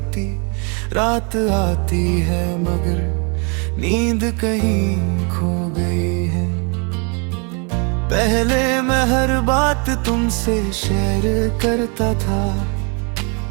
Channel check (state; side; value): quieter; left; 35.3 dB